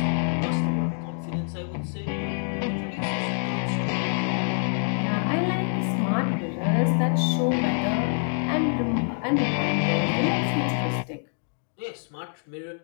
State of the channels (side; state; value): right; silent; digital silence